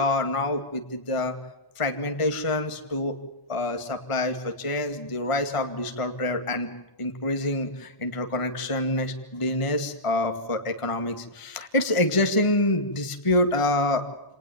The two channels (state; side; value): late; right; 1.4 ms